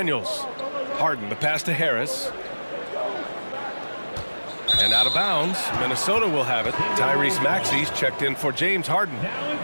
Harden, the pass to Harris. And out of bounds, Minnesota will have it. Tyrese Maxey's checked in for James Harden. Now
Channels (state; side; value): inverted; both; correlation -1.00